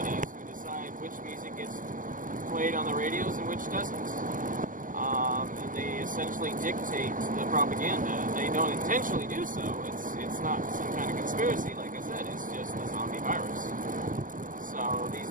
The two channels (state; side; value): late; left; 0.39 ms